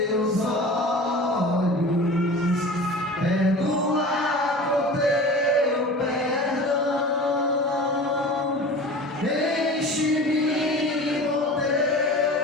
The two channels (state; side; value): normal; both; correlation 0.36